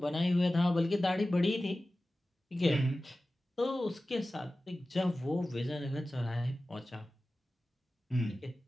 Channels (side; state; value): both; normal; correlation 0.96